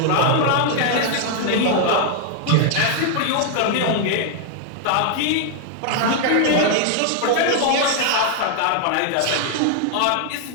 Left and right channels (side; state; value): both; different; correlation 0.00